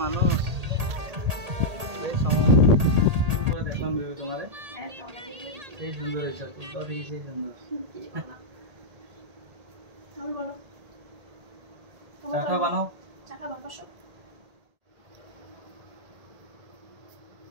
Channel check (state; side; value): late; left; 1.8 ms